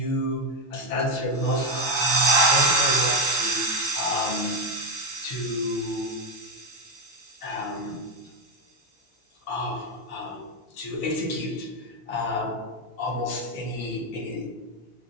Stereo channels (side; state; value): both; normal; correlation 0.10